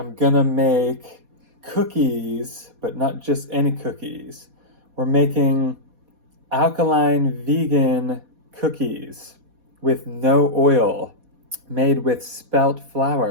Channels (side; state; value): left; late; 4.2 ms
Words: gonna make cookies, but not just any cookies. We're making alkaline vegan cookies with no oil, made with spelt